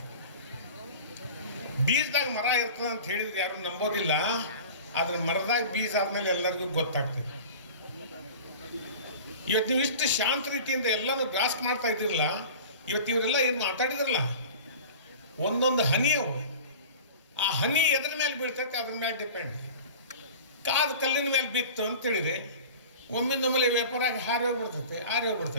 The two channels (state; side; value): inverted; both; correlation -0.39